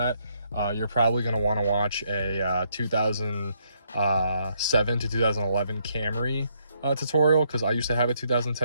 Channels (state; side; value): inverted; both; correlation -0.73